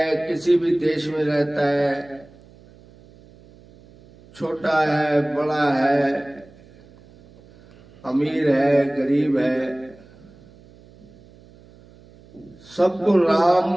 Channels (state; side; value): noise; right; hum, 25 dB below the sound